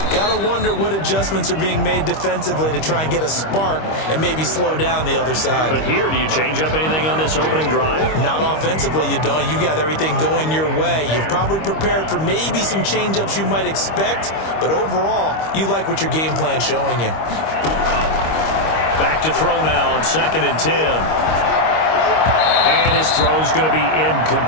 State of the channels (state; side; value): late; right; 25 ms